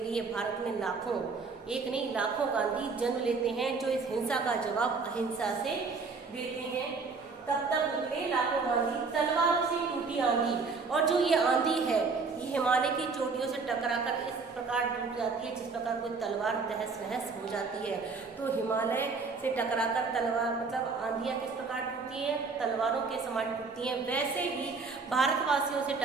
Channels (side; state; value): left; quieter; 4.5 dB